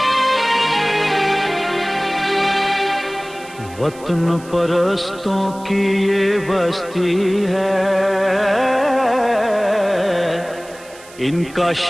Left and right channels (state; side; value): noise; right; hiss, 21 dB below the sound